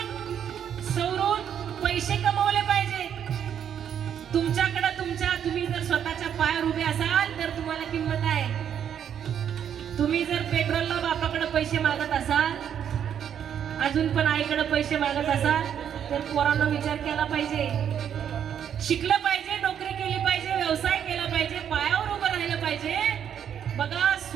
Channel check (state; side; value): quieter; left; 8.9 dB